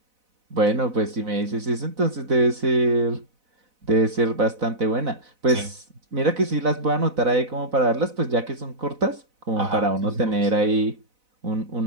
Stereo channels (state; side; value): late; left; 4.0 ms